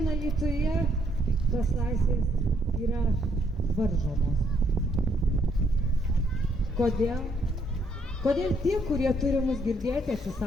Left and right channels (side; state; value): both; normal; correlation 0.71